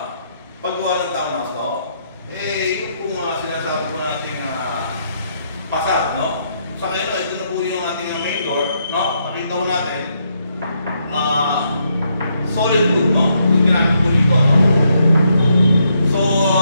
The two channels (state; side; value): inverted; both; correlation -0.77